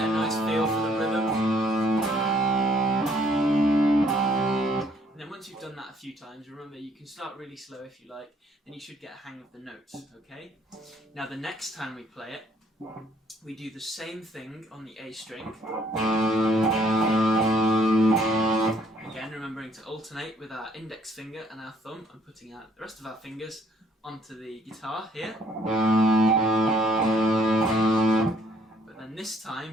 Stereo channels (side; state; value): both; normal; correlation 0.63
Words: a few times. Remember, you can start really slow if you like, then you should get a hang of the notes, okay? Now the next time we play it, we do the same thing on the A string. Again, remembering to alternate with our index finger and our thumb, and putting out the rest of our fingers onto the guitar here. But then this